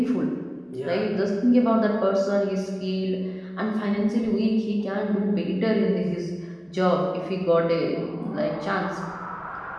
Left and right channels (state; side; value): identical; both; correlation 1.00